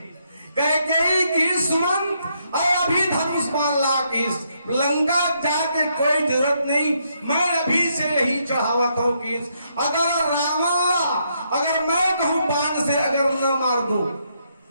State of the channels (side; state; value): both; inverted; correlation -0.76